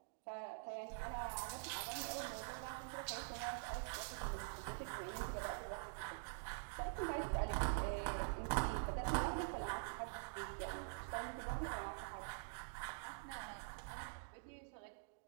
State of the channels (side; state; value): left; silent; digital silence